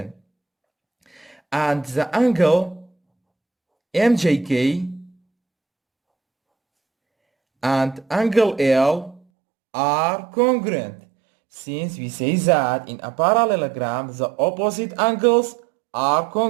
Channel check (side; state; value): left; drops out; at 9.2 s